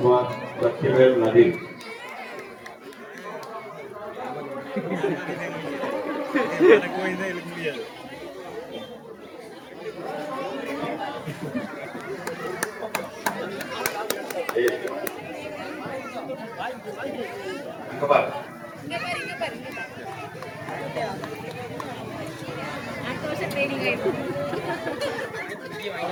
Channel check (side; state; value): both; identical; correlation 1.00